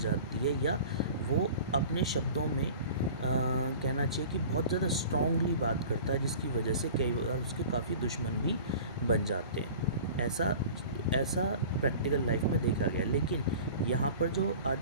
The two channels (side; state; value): both; inverted; correlation -0.40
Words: है, या वो अपने शब्दों में कहना चाहिए कि बहुत ज़्यादा स्ट्रांगली बात करता है, जिसकी वजह से कई बार उसके काफ़ी दुश्मन भी बन जाते हैं। ऐसा प्रैक्टिकल लाइफ में देखा गया। लेकिन यहाँ पर जो आज